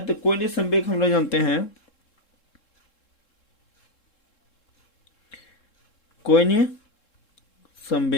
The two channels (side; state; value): right; late; 3.7 ms